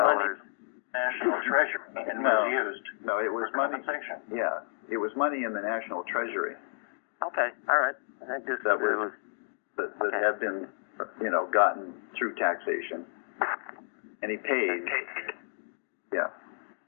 National treasury and was used. No, it was money. Compensation. Yeah, it was money in the national treasury. Okay, all right. That had been, gotten through taxation, and he paid. Yeah.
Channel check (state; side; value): silent; right; digital silence